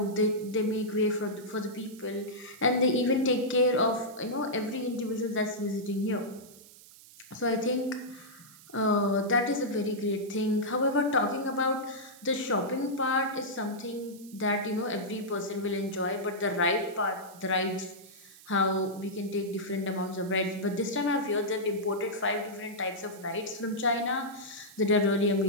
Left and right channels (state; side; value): noise; right; hiss, 21 dB below the sound